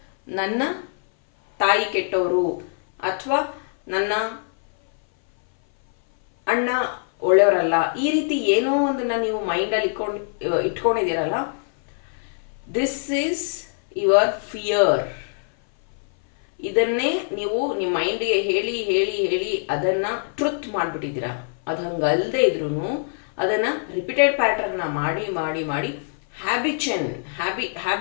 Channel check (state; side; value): silent; right; 58 dB below the other